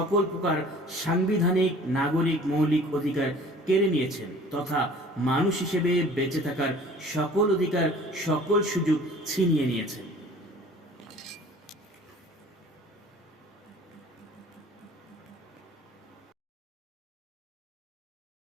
প্রকার সাংবিধানিক নাগরিক মৌলিক অধিকার কেড়ে নিয়েছেন তথা মানুষ হিসেবে বেঁচে থাকার সকল অধিকার সকল সুযোগ ছিনিয়ে নিয়েছেন।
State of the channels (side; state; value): both; normal; correlation 0.48